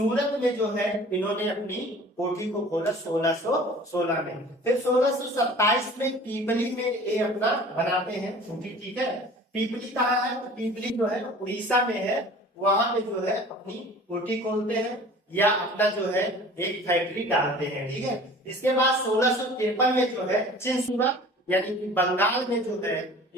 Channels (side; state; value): both; normal; correlation 0.45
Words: में जो है इन्होंने अपनी कोठी को खोला 1616 में। फिर 1627 में पीपली में ये अपना बनाते हैं कोठी। ठीक है, पीपली कहाँ है? तो पीपली जो है उड़ीसा में है, वहां पे जो है अपनी कोठी खोलते हैं या अपना जो है एक फैक्ट्री डालते हैं। ठीक है, इसके बाद 1653 में जो है चिंसुरा यानी कि बंगाल में जो है